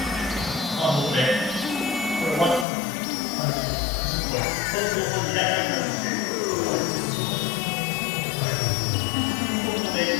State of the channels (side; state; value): right; drops out; at 2.7 s